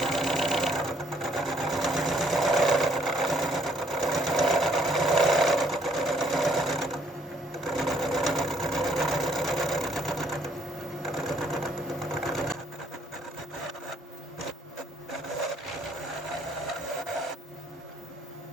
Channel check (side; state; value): both; normal; correlation 0.66